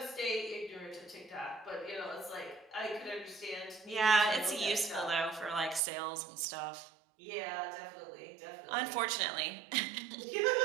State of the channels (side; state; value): left; drops out; at 5.8 s